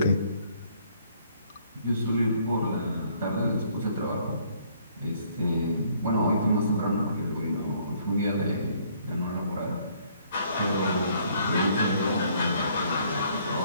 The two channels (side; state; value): both; inverted; correlation -0.63